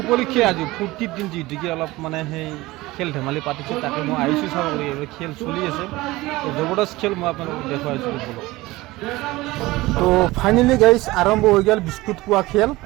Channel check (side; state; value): left; quieter; 19.6 dB